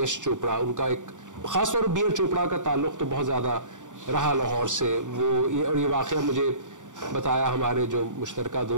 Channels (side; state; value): left; late; 0.86 ms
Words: چوپڑا, ان کا ایک خاص طور پر بی آر چوپڑا کا تعلق تو بہت زیادہ رہا لاہور سے. اور یہ واقعہ مجھے بتایا ہمارے جو مشترکہ